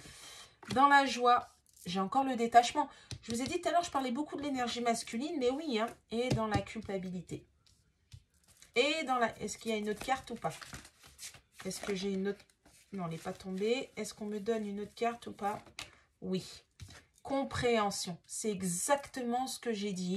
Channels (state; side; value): identical; both; correlation 1.00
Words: Dans la joie, j'ai encore le détachement. Je vous ai dit tout à l'heure, je parlais beaucoup de l'énergie masculine, mais oui, hein. Et dans la culpabilité. Et dans la... Est-ce qu'il y a une autre carte ou pas? Est-ce que j'ai une autre... Non, elle n'est pas tombée. Est-ce qu'on me donne une autre carte ou pas? Oui. Compréhension. C'est exactement ce que j'ai